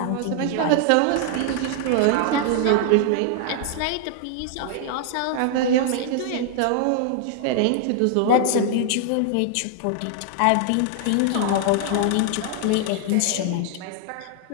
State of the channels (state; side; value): different; both; correlation 0.00